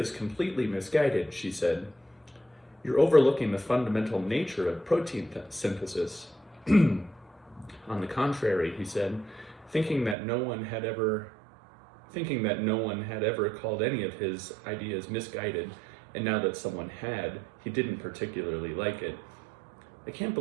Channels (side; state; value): left; drops out; at 10.2 s